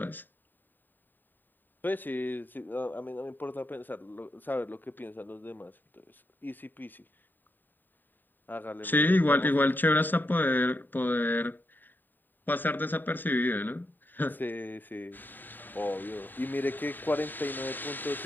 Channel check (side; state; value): right; late; 0.091 ms